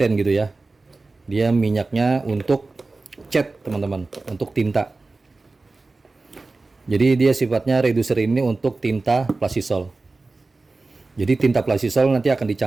gitu ya. Dia minyaknya untuk cat, teman-teman, untuk tinta. Jadi dia sifatnya reducer ini untuk tinta plastisol. Jadi tinta plastisol nanti akan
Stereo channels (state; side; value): quieter; left; 3.5 dB